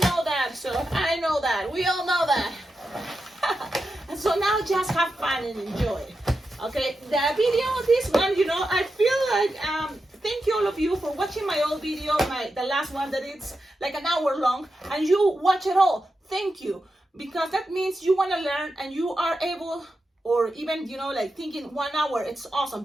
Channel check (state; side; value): normal; both; correlation 0.89